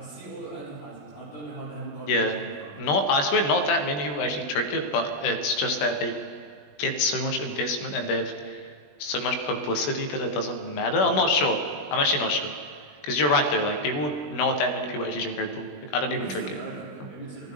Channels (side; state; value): right; late; 20 ms